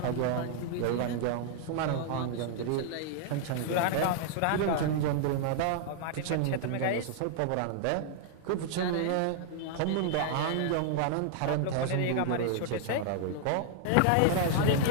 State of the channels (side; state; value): both; different; correlation -0.01